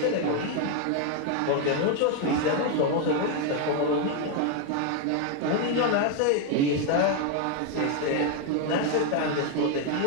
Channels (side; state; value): both; different; correlation 0.01